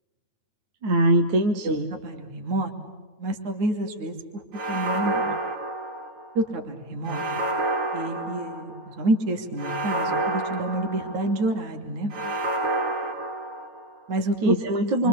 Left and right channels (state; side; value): late; left; 9.0 ms